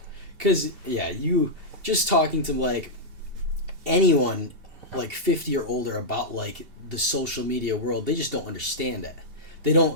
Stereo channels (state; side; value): late; left; 2.7 ms